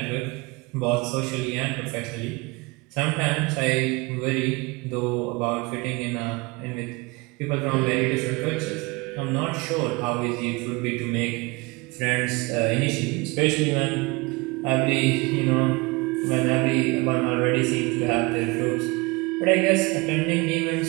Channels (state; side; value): quieter; left; 25.6 dB